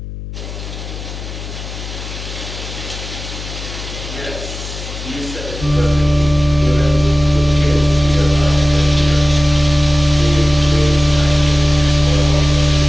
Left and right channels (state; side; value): noise; left; hum, 10 dB below the sound